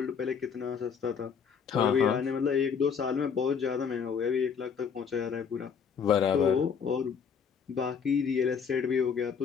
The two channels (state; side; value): quieter; right; 6.6 dB